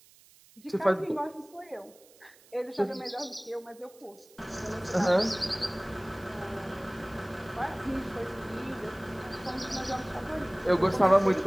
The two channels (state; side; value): noise; right; hiss, 26 dB below the sound